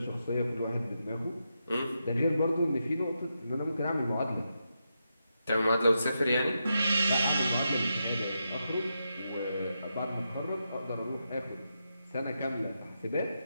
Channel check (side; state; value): both; inverted; correlation -0.86